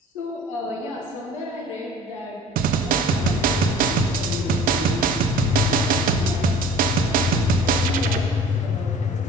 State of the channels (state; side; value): normal; both; correlation 0.46